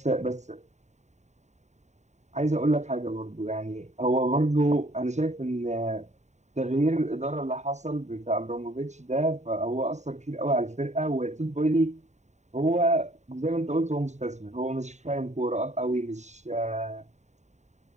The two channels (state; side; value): late; left; 0.34 ms